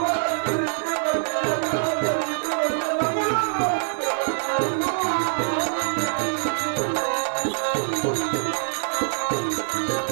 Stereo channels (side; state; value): left; silent; digital silence